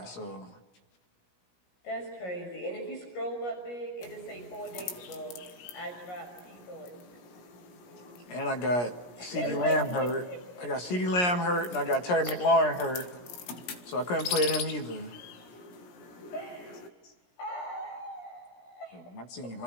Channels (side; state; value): right; late; 17 ms